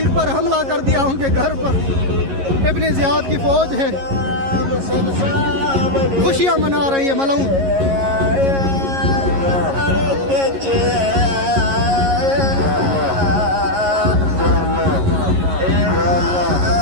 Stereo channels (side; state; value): left; late; 11 ms